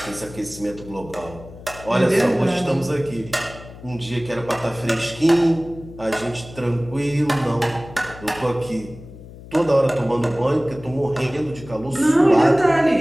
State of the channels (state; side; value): noise; left; hum, 17 dB below the sound